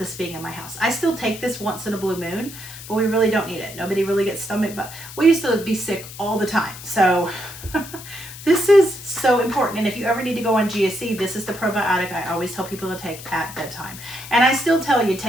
being in my house. I still take this once in a blue moon, but we really don't need it. Nobody really gets stomach, but we used to be sick all the time. So this is so important. And if you ever need to go on GSC, this is the probiotic I always tell people to take at bedtime. And I still tell you,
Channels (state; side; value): noise; left; hiss, 14 dB below the sound